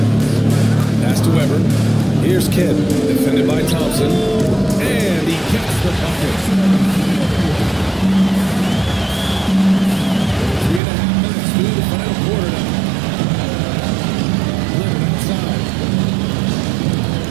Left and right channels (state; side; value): drops out; left; at 10.8 s